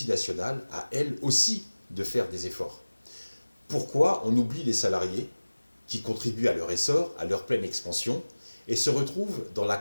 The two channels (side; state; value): both; inverted; correlation -1.00